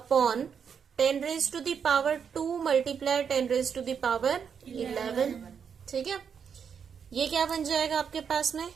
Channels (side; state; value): left; quieter; 7.0 dB